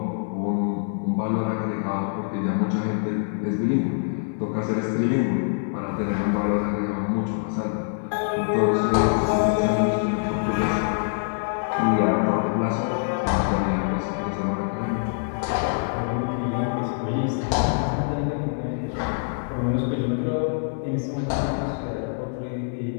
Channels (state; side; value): silent; right; digital silence